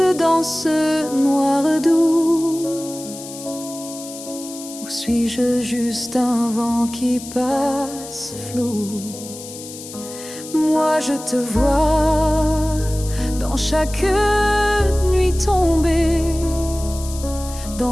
dans ce noir doux? Ou suis-je juste un vent qui passe flou? Moi je te vois dans chaque nuit tombée,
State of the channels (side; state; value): left; noise; hiss, 13 dB below the sound